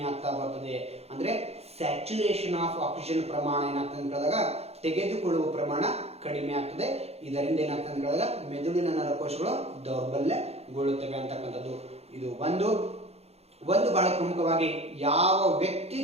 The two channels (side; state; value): left; late; 0.30 ms